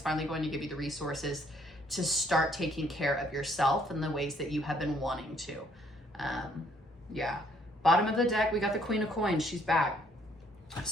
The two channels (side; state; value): both; normal; correlation 0.66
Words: finally going to give you the resources to start taking care of yourself in the ways that you have been wanting to. Yeah. Bottom of the deck, we got the Queen of Coins. She's back.